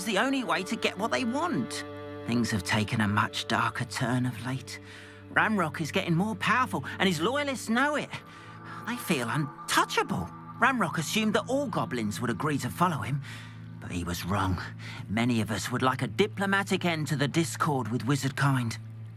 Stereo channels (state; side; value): identical; both; correlation 1.00